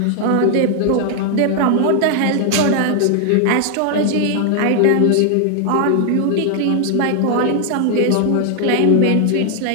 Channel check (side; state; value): both; different; correlation 0.00